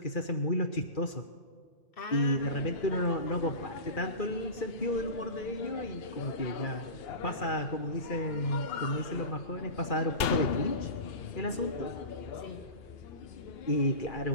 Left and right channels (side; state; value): right; late; 2.8 ms